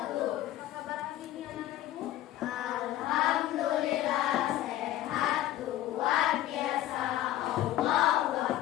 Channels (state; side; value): quieter; right; 13.7 dB